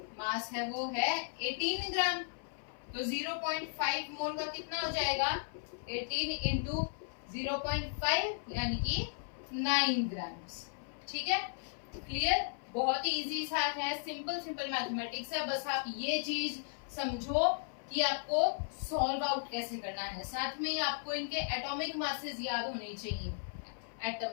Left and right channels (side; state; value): right; silent; 54 dB below the other